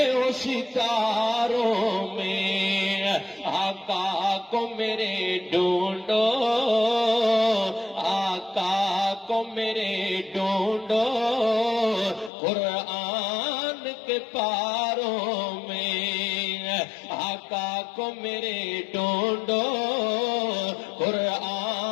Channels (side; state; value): right; drops out; at 12.3 s